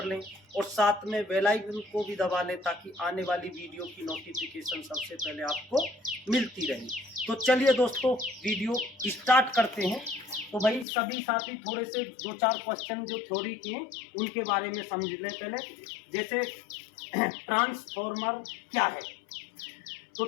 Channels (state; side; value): drops out; right; at 10.9 s